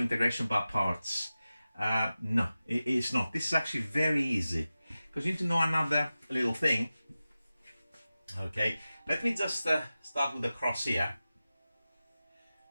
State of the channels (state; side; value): inverted; both; correlation -0.95